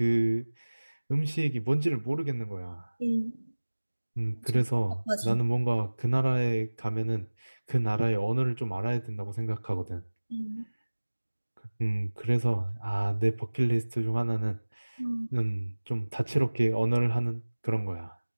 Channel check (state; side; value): inverted; both; correlation -1.00